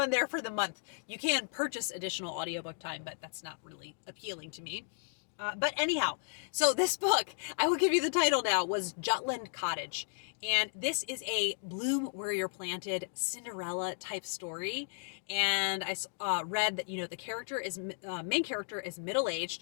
there for the month. You can purchase additional audiobook time, but that's not really appealing to me. But anyhow, so this book, I will give you the title now, was Jutland Cottage. And this is a bloom where you're planted Cinderella type story. And I read that, the main character is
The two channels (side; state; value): right; silent; digital silence